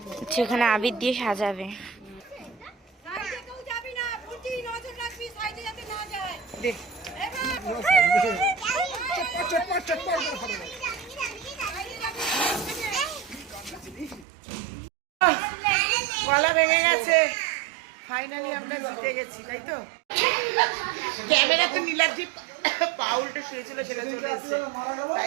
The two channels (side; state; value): left; drops out; at 14.2 s